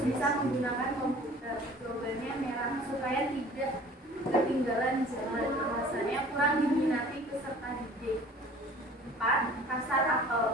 menggunakan komputer. Jawabannya merah supaya tidak ketinggalan zaman. Alasannya kurang diminati peserta didik. 4. Pasar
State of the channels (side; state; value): both; normal; correlation 0.48